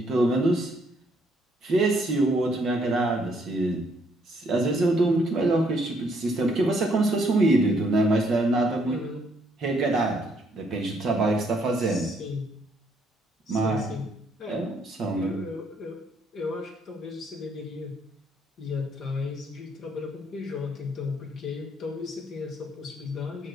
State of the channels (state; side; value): normal; both; correlation 0.69